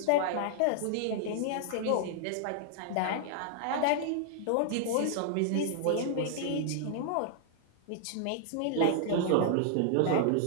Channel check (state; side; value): different; both; correlation -0.01